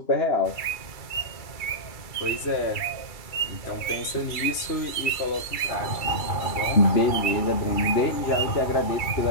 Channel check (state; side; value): late; right; 2.3 ms